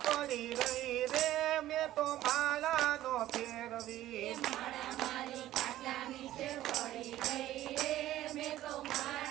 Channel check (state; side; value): quieter; left; 14.1 dB